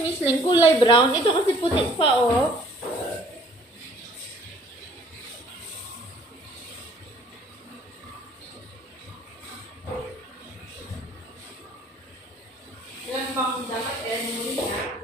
Leng, kulay brown. Ito kasi puti pa, oh. Ilan bang dapat alam mo rin na?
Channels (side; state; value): both; normal; correlation 0.57